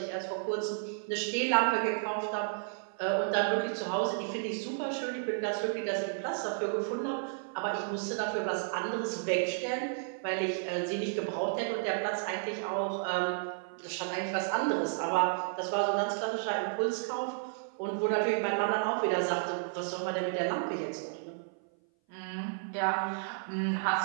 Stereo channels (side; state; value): left; silent; 56 dB below the other